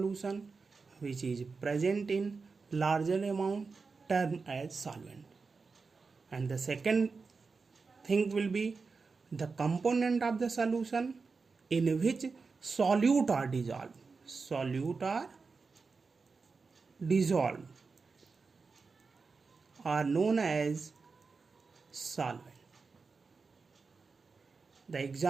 which is present in larger amount termed as solvent. And the second thing will be the component of the solution in which solute are dissolved. Solute are dissolved are known as solvent. The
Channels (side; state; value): left; quieter; 4.6 dB